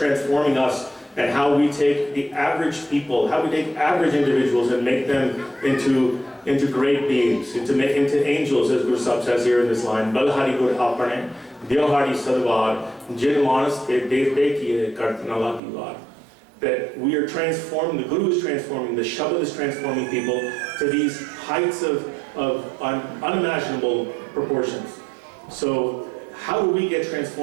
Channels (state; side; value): drops out; left; at 15.6 s